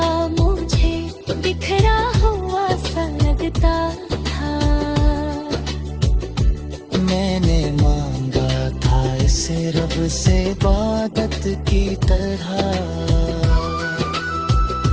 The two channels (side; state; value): both; identical; correlation 1.00